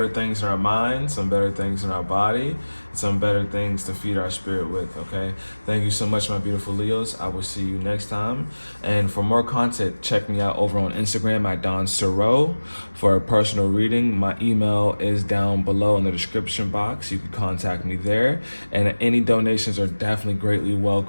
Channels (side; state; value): both; inverted; correlation -1.00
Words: things in our mind, some better things in our body, some better things to feed our spirit with, okay? Thank you so much, my beautiful Leos. I will see you next time. And for more content, check me out over on Instagram at Donstarot for a personal reading. My email is down below in the description box. You can contact me there. And any donations are definitely greatly